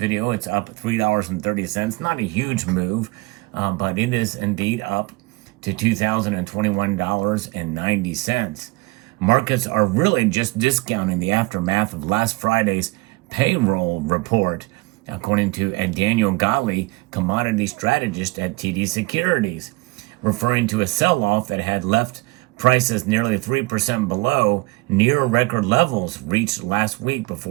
it's up $3.30. Not a huge move, but it is indeed up to $2,021.90. Markets are really just discounting the aftermath of last Friday's payroll report, according to Daniel Gali, commodity strategist at TD Securities, referring to a sell-off that had left prices nearly 3% below near record levels reached last week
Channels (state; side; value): quieter; left; 23.3 dB